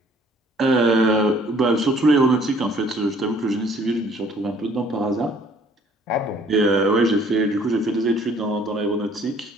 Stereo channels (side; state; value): both; normal; correlation 0.58